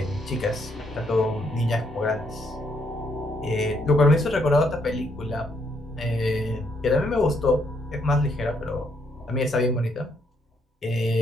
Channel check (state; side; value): normal; both; correlation 0.73